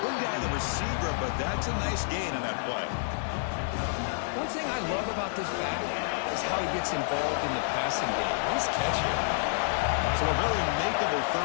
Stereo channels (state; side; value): silent; right; 58 dB below the other